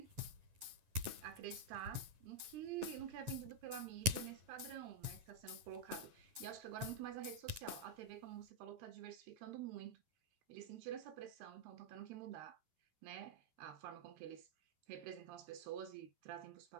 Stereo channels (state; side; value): late; left; 10 ms